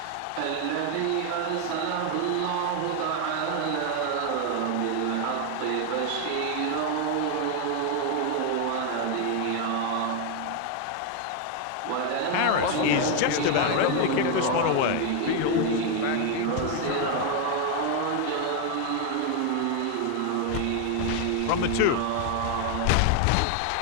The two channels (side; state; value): both; different; correlation 0.01